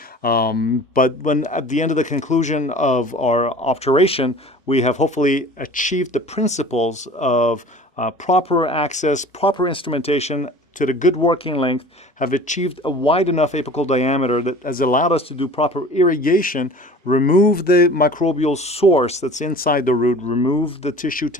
But when at the end of the conclusion of our obturation, we have hopefully achieved the principles of proper access, proper instrumentation, to the good working length, have achieved a wide enough apical diameter that has allowed us to do proper irrigation, remove the microbial source that's inside the root, remove the tissue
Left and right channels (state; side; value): normal; both; correlation 0.43